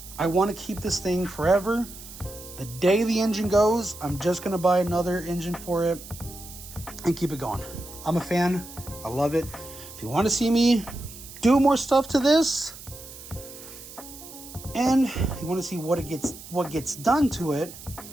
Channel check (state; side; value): noise; right; hiss, 15 dB below the sound